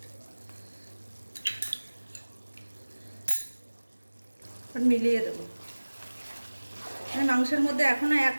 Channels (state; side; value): inverted; both; correlation -1.00